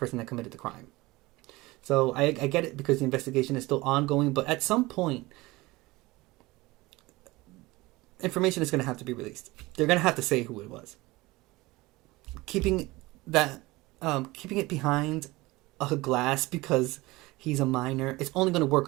that committed the crime. So I get it because the investigation is still ongoing. But at some point, information is going to have to be released. They're going to have to say who it was. Keeping it behind a glass because he's a minor, it's only going to work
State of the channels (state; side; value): quieter; left; 21.1 dB